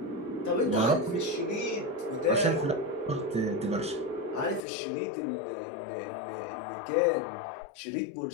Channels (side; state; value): right; drops out; at 4.6 s